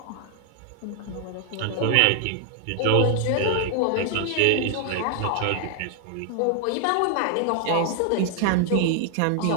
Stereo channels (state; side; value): different; both; correlation 0.00